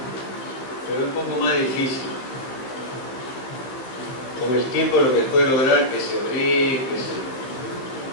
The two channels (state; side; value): late; right; 16 ms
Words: pero es un poco más difícil. Con el tiempo lo que puede lograr que se abrí,